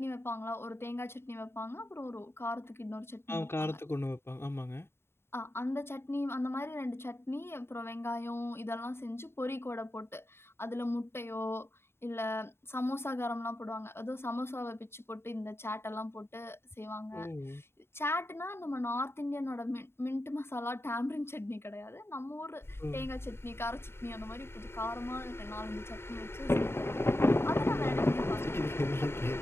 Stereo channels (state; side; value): late; right; 0.12 ms